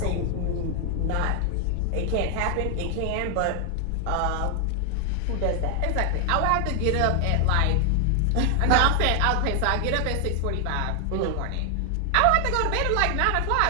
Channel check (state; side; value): different; both; correlation 0.00